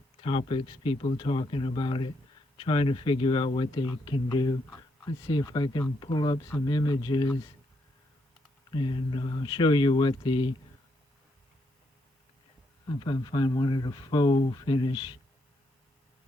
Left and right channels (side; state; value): both; normal; correlation 0.77